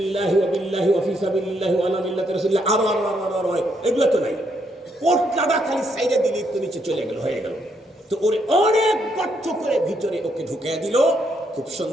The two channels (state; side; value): normal; both; correlation 0.75